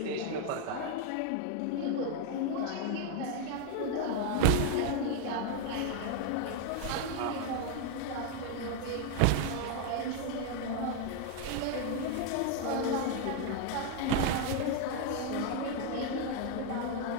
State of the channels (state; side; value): different; both; correlation 0.01